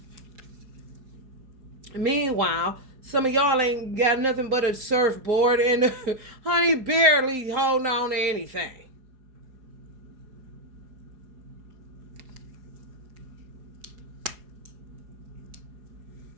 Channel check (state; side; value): late; left; 4.8 ms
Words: Meanwhile, some of y'all ain't got nothing but a surfboard and honey barely holding on to anything.